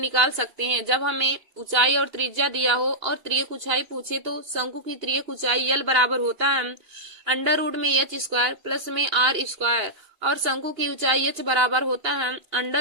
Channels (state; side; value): late; left; 2.8 ms